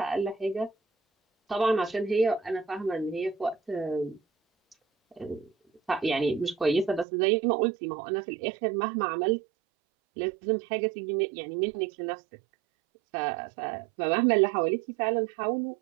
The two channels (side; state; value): left; drops out; at 7.1 s